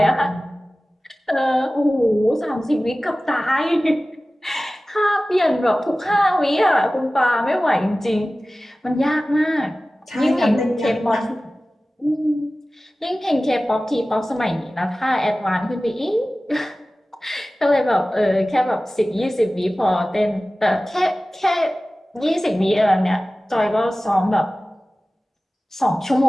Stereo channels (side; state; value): both; normal; correlation 0.97